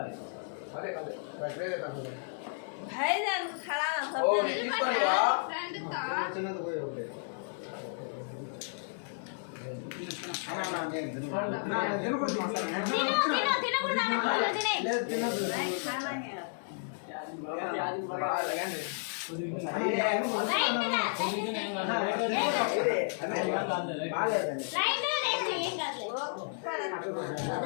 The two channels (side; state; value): right; silent; 56 dB below the other